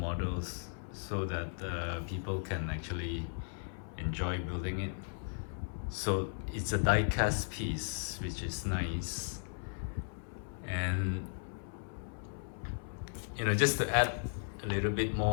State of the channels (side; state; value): right; silent; 54 dB below the other